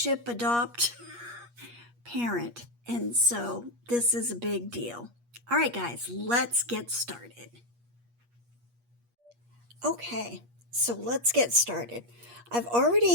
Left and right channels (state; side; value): late; left; 8.4 ms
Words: adopt parent. And so this is a big deal. All right, guys, let's get started. Okay, so let's get started. I've